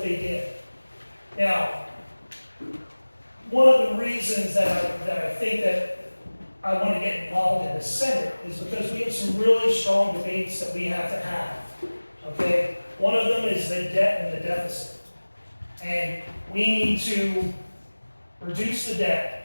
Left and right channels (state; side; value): inverted; both; correlation -1.00